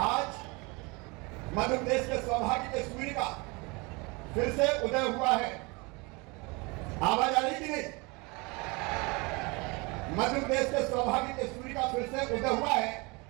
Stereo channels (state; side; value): quieter; left; 27.1 dB